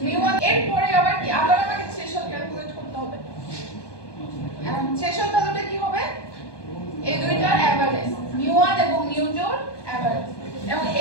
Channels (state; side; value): late; right; 1.2 ms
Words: মিউ1 এর পরে আবার কি আবার আমাকে থ্রেশহোল্ড ক্যালকুলেট করতে হবে। এখন থ্রেশহোল্ড ভ্যালুটা কি হবে এই দুইটার এভারেজ মিউ1 এবং মিউ2 এর এভারেজ এবং